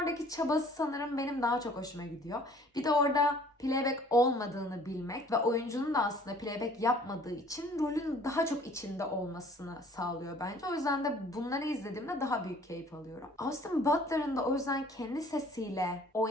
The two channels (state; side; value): normal; both; correlation 0.54